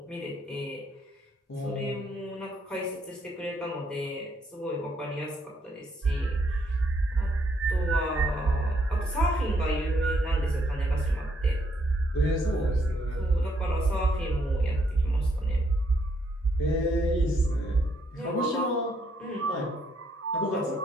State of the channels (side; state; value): both; normal; correlation 0.73